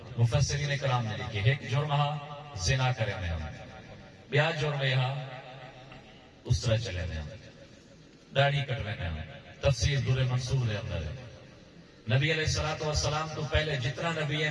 مفسرین کرام نے لکھے، ایک جرم زنا کرے میں ہم، بیا جرم یہاں اس طرح چلے میں ہم، داڑھی کٹوے میں ہم۔ تفسیر در منصور دے اندر ہے، نبی علیہ السلام تو پہلے جتنا نبی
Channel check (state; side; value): identical; both; correlation 1.00